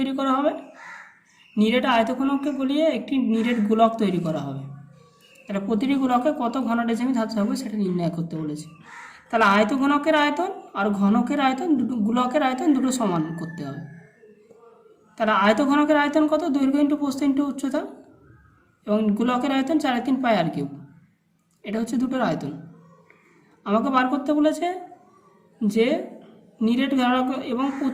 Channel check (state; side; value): identical; both; correlation 1.00